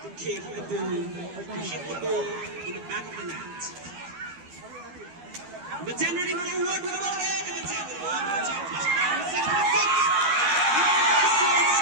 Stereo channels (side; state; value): left; late; 12 ms